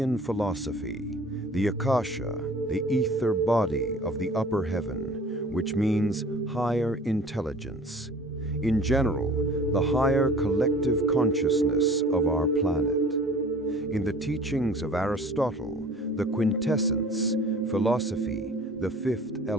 philosophy, the Akasha, the ether body of the upper heaven, which means higher intelligence. In general, the higher collective consciousness of our planet. In the teachings of Aristotle, the quintessence, philosophy, the fifth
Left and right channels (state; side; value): normal; both; correlation 0.46